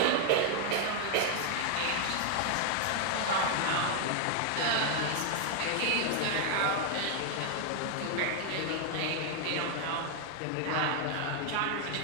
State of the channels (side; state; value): both; different; correlation 0.00